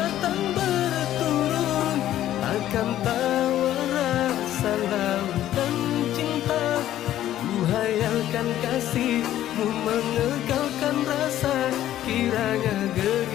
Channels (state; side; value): quieter; right; 12.7 dB